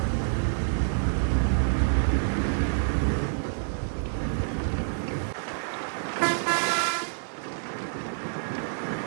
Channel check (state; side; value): silent; left; digital silence